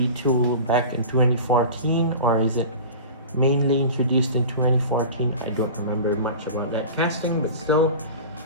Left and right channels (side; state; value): both; inverted; correlation -0.35